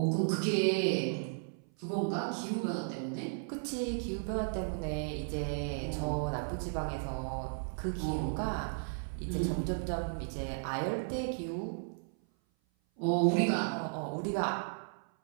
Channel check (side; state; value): left; silent; 55 dB below the other